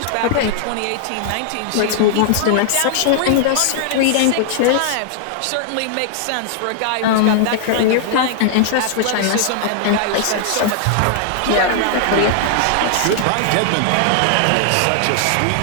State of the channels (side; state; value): both; different; correlation -0.01